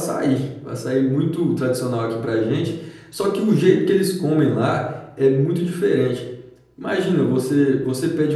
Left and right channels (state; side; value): identical; both; correlation 1.00